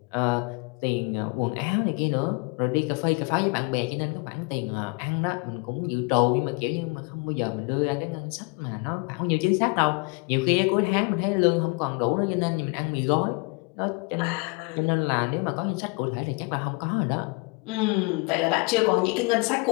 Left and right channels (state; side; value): quieter; right; 29.2 dB